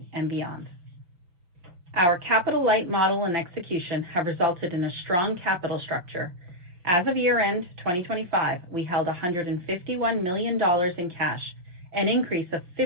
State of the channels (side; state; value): left; late; 5.8 ms